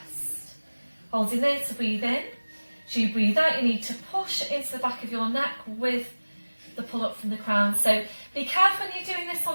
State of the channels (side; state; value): both; inverted; correlation -1.00